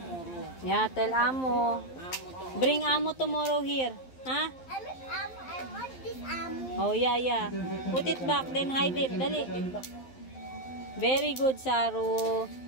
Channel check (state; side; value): late; right; 11 ms